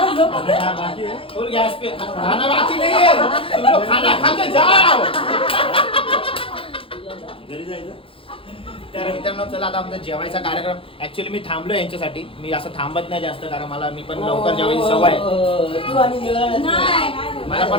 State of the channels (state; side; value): late; right; 0.26 ms